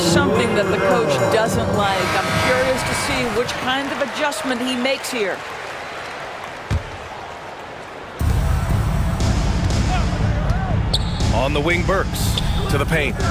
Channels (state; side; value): identical; both; correlation 1.00